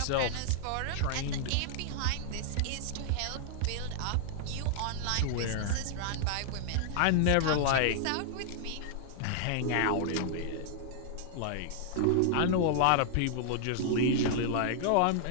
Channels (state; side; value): different; both; correlation -0.01